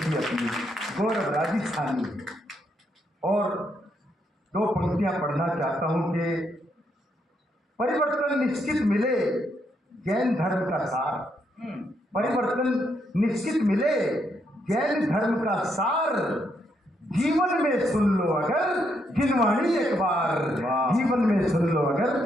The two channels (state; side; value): normal; both; correlation 0.77